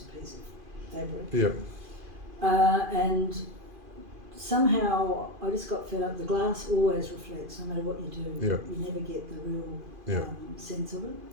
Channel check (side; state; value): left; late; 2.5 ms